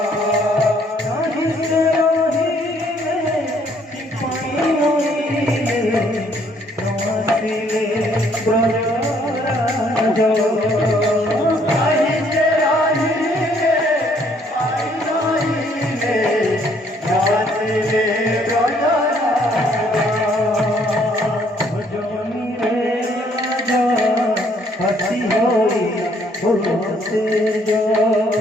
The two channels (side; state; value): both; normal; correlation 0.65